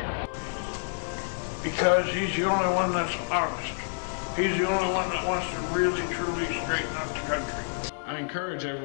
Because he's the only one that's honest. He's the only one that wants to really, truly straighten up the country. I encourage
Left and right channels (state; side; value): silent; right; digital silence